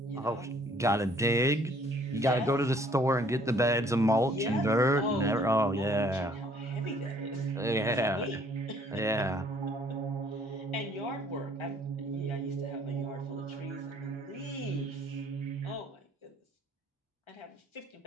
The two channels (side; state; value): both; normal; correlation 0.60